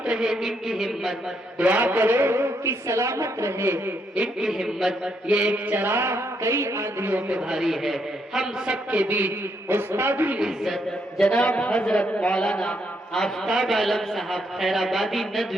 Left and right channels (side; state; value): both; normal; correlation 0.76